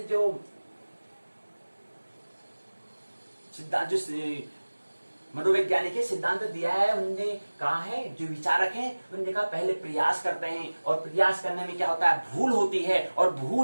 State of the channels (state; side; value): inverted; both; correlation -1.00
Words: जो मनोवैज्ञानिक है, सिद्धांत दिया है, उनने कहा है, जो विचारक हैं उन्होंने कहा पहले प्रयास करते हैं, और प्रयास करने में क्या होता है, भूल होती है, और